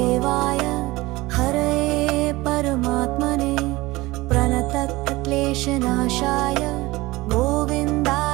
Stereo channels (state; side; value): quieter; left; 20.3 dB